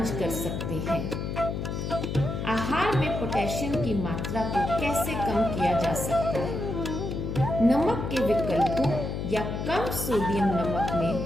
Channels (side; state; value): left; noise; hum, 4 dB below the sound